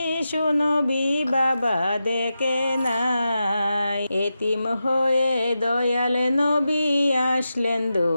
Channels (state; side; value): inverted; both; correlation -0.90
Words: নবী বাবা দেখে নাই। এতিম হয়ে দয়াল নবী আসলেন